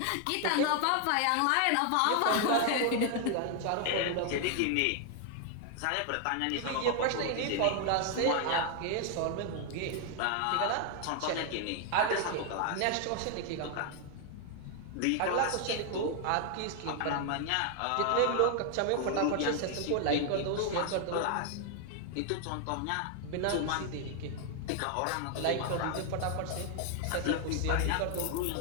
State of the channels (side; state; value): both; different; correlation 0.00